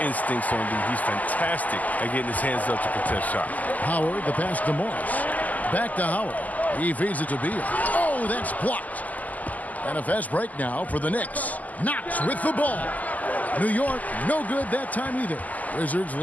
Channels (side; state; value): right; late; 0.078 ms